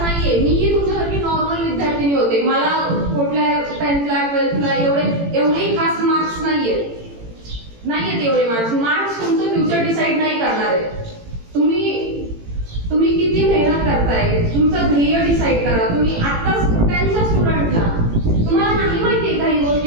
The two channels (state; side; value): late; left; 18 ms